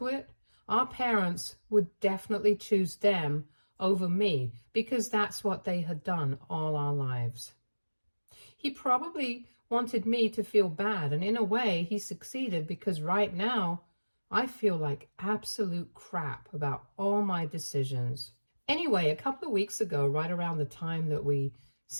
it, our parents would definitely choose them over me, because that's what they had done all our lives. He probably wanted me to feel bad, and in a way he succeeded, because right now I feel like absolute crap about all my decisions. Anyway, a couple of weeks ago, right around the time that we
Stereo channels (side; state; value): both; inverted; correlation -1.00